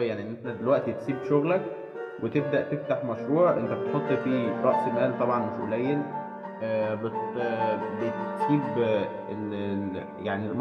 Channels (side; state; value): both; identical; correlation 1.00